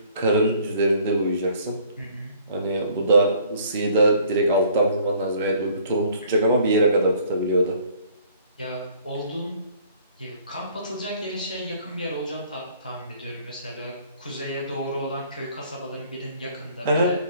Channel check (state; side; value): inverted; both; correlation -0.57